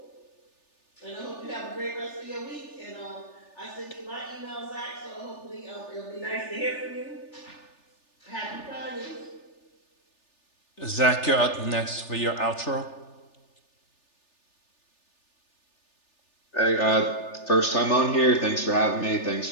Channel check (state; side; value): late; right; 3.4 ms